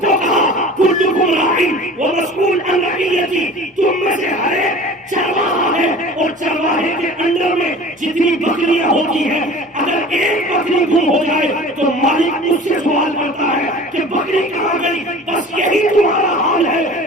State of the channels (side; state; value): both; normal; correlation 0.41